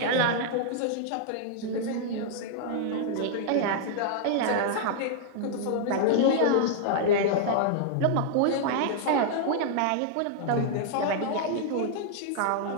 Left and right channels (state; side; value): different; both; correlation -0.01